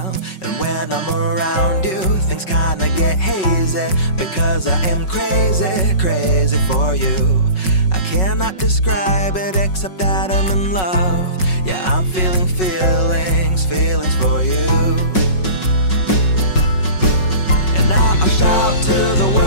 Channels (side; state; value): right; late; 5.4 ms